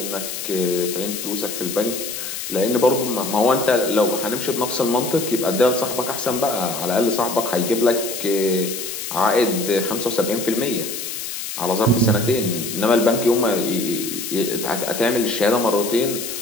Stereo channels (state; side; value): noise; left; hiss, 6 dB below the sound